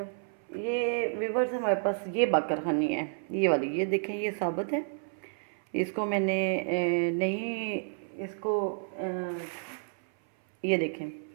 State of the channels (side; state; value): left; silent; 57 dB below the other